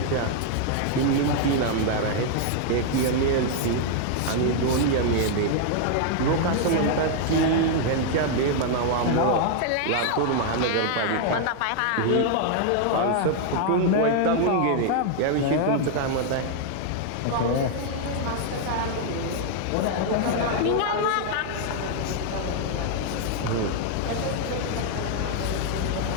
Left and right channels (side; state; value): both; different; correlation 0.00